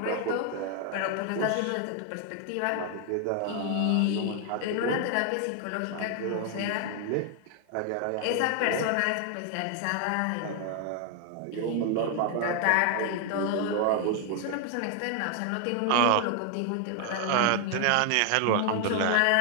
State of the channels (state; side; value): different; both; correlation 0.00